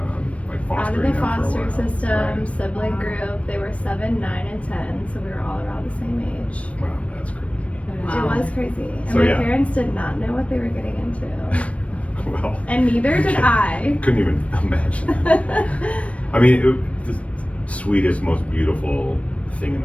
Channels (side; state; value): right; late; 0.064 ms